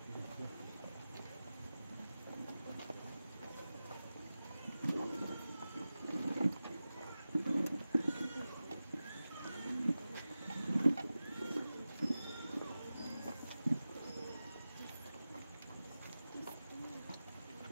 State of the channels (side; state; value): both; inverted; correlation -0.95